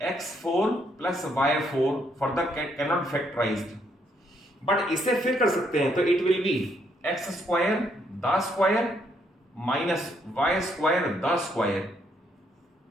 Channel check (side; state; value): both; normal; correlation 0.72